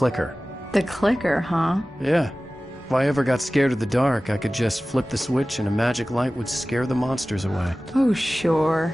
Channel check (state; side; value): normal; both; correlation 0.97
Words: The clicker, huh? Yeah. If I ever got scared of the dark, I could just flip the switch and a magic light would scare the monsters away. Oh,